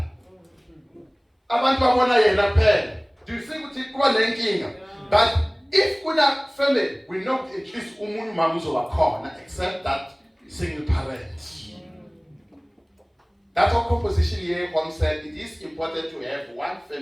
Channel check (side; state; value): both; identical; correlation 1.00